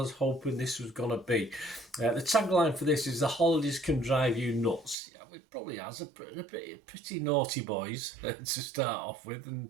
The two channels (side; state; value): left; drops out; at 5.0 s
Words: was hoping this was going to be. The tagline for this is "The holidays can drive you nuts." Yeah, it probably has. A pretty naughty boys to start off with,